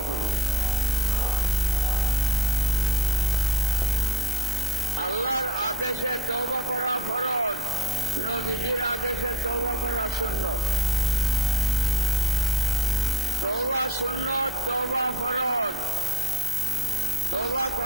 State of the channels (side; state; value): both; normal; correlation 0.59